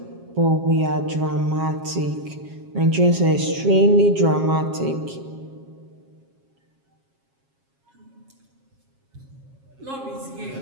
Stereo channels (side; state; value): left; late; 7.4 ms